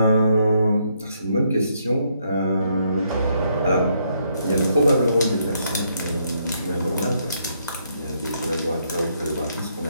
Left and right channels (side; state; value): both; inverted; correlation -0.74